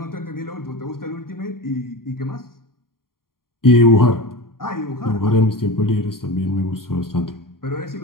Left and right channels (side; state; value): right; late; 0.92 ms